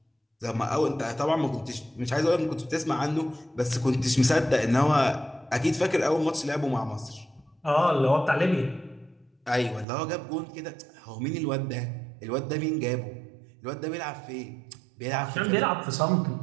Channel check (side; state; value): left; drops out; at 9.9 s